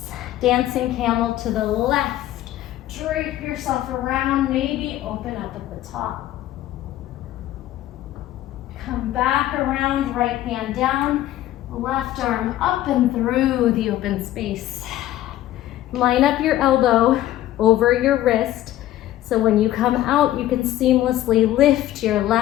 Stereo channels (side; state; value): right; quieter; 13.9 dB